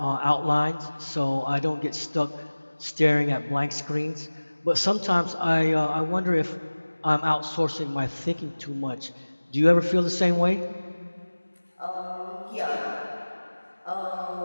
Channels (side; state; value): both; inverted; correlation -1.00